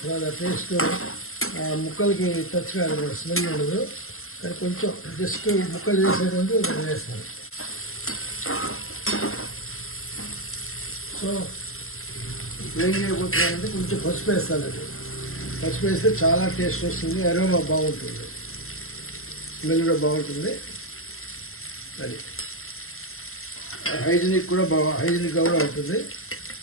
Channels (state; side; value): late; right; 0.62 ms